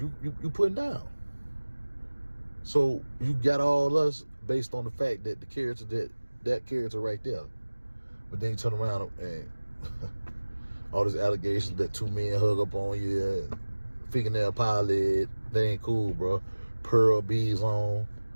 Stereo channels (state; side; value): inverted; both; correlation -1.00